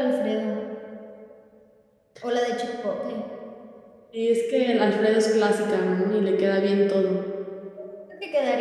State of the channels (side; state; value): both; identical; correlation 1.00